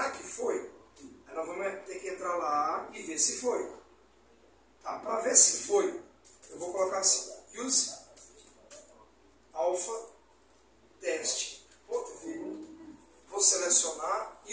que foi? Aí nós vamos ter que entrar lá e ver se foi. Tá? Para ver se foi, eu vou colocar assim, use alpha test. Vou selecionar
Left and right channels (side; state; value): both; identical; correlation 1.00